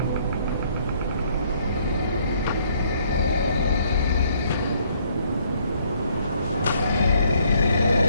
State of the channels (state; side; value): inverted; both; correlation -0.66